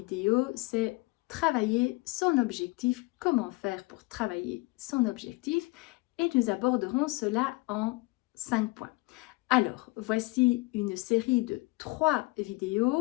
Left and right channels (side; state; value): right; quieter; 23.9 dB